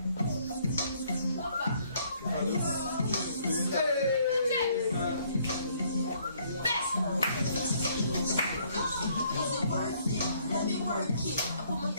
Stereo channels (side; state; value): both; inverted; correlation -0.64